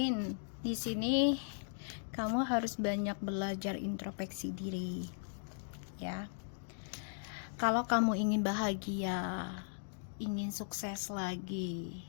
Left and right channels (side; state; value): right; silent; digital silence